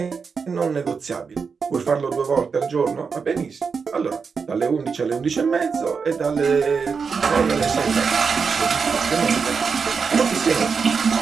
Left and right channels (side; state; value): left; quieter; 5.5 dB